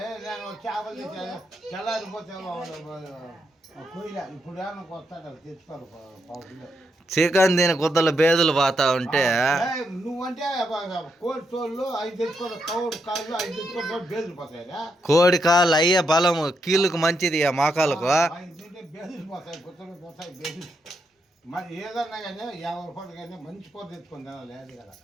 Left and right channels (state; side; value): normal; both; correlation 0.80